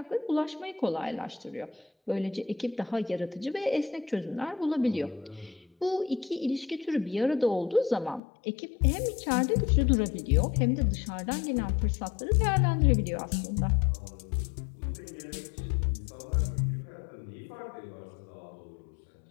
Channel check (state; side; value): drops out; right; at 8.2 s